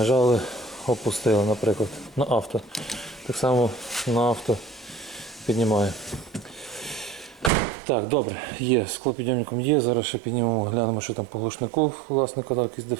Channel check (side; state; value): left; drops out; at 7.5 s